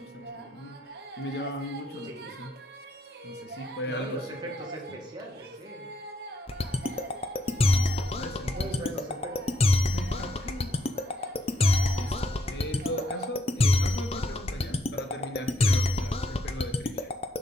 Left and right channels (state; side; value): normal; both; correlation 0.73